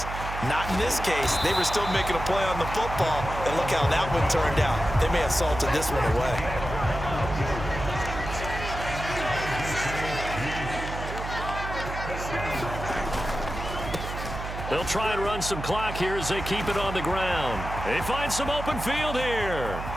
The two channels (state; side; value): noise; right; hum, 7 dB below the sound